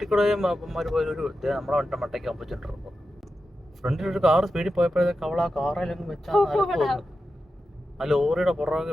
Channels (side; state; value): both; normal; correlation 0.91